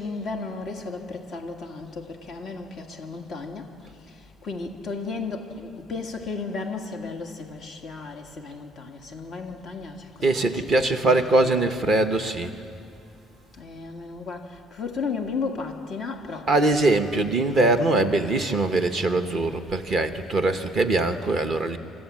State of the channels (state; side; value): normal; both; correlation 0.61